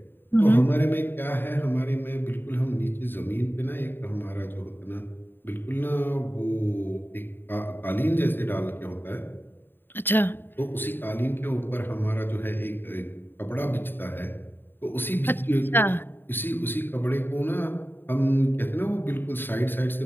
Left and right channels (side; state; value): right; late; 0.097 ms